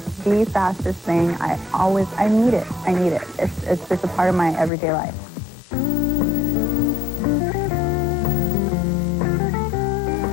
the fastest thing. I need it. I need it. It's just a part of my everyday life.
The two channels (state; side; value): drops out; right; at 4.7 s